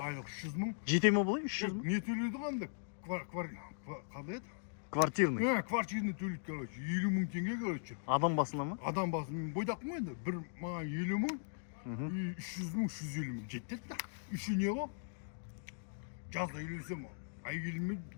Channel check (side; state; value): right; silent; digital silence